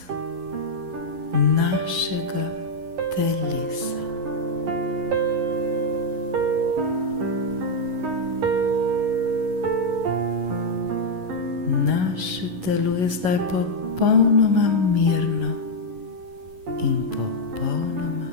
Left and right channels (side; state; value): left; late; 11 ms